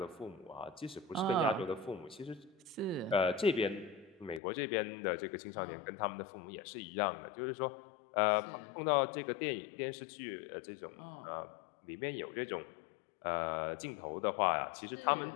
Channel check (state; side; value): drops out; right; at 4.4 s